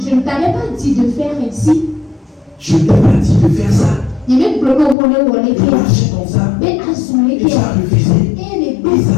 ne t'avais pas dit de faire ainsi. Je ne t'ai pas dit de faire ça. De marcher comme ça. Et tu as refusé. Ils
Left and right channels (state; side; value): drops out; right; at 5.0 s